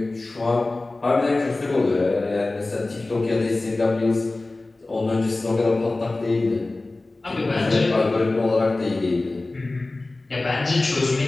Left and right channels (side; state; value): right; quieter; 3.1 dB